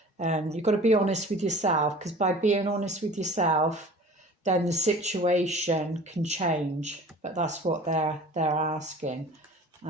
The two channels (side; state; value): both; normal; correlation 0.43